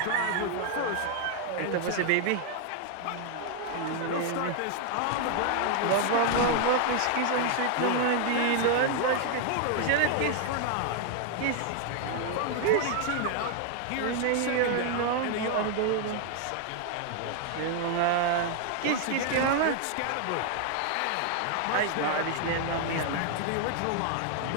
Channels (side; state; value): both; different; correlation 0.00